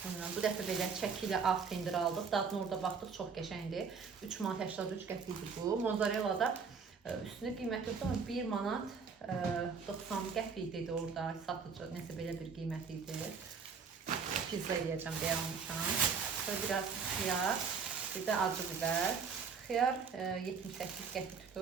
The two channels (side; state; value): left; quieter; 5.6 dB